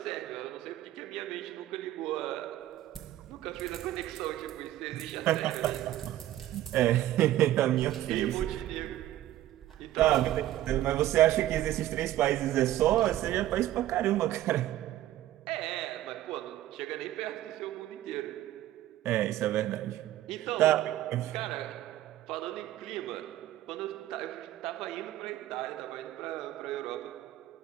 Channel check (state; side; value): quieter; left; 13.9 dB